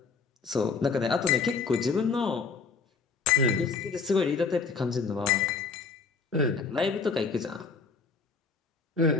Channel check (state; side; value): quieter; right; 4.9 dB